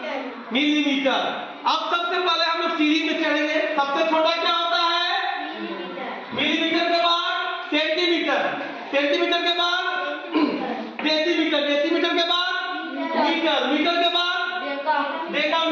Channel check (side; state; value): both; identical; correlation 1.00